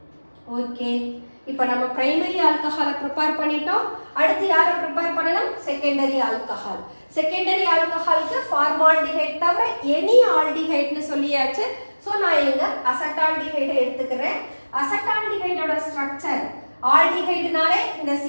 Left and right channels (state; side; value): inverted; both; correlation -1.00